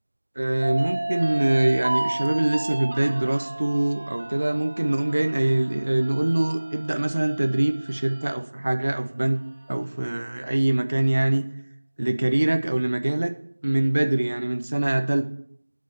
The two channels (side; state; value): both; inverted; correlation -1.00